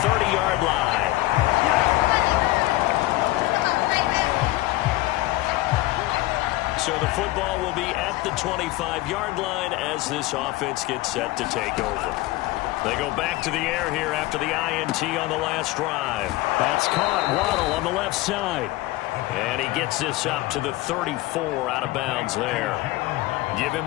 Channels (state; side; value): quieter; right; 18.2 dB